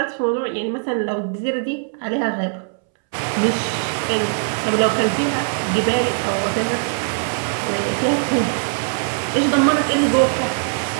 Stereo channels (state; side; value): silent; left; 65 dB below the other